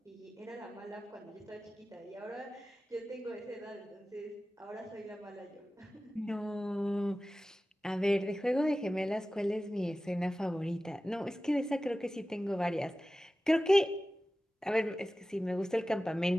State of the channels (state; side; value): normal; both; correlation 0.96